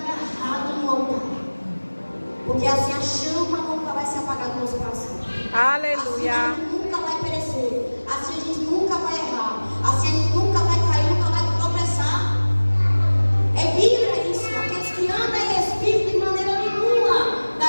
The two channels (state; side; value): inverted; both; correlation -1.00